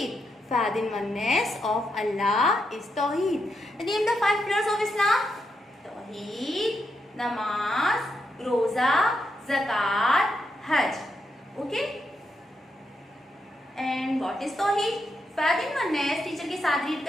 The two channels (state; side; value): normal; both; correlation 0.82